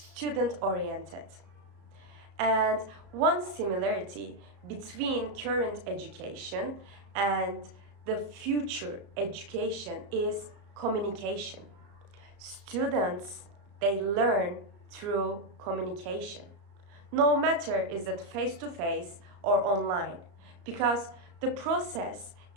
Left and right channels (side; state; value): left; late; 34 ms